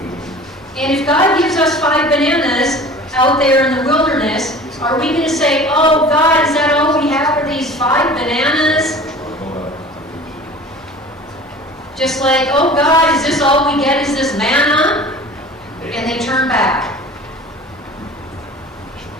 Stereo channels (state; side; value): normal; both; correlation 0.42